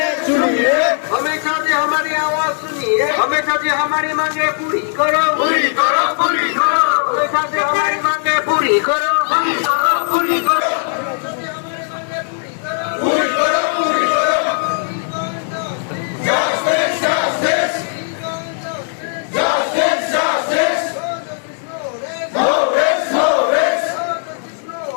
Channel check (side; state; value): right; silent; digital silence